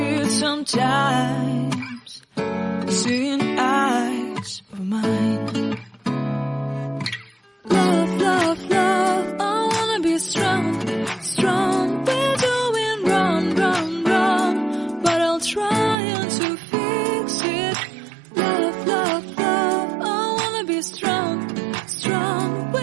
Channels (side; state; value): left; drops out; at 16.0 s